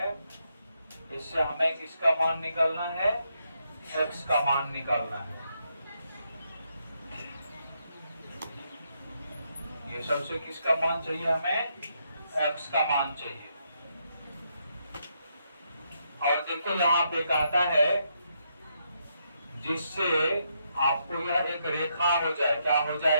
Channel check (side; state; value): both; inverted; correlation -0.78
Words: इससे हमें किसका मान निकालना है? x का मान निकालना है। ये सबसे किसका मान चाहिए? हमें x का मान चाहिए। और देखो यहाँ पे कहता है जिससे आपको यह एक रेखा हो जाए। क्या हो